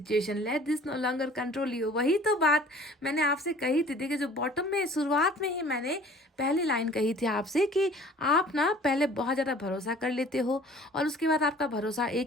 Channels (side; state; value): both; normal; correlation 0.50